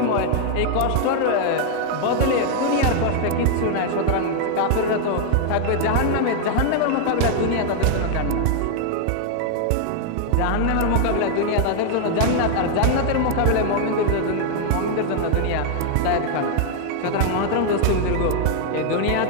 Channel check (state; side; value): different; both; correlation 0.00